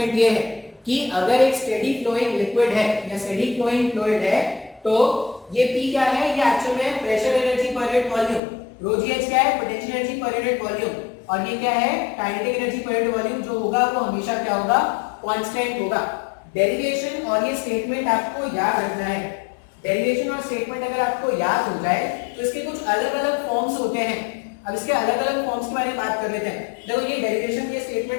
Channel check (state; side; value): drops out; right; at 8.4 s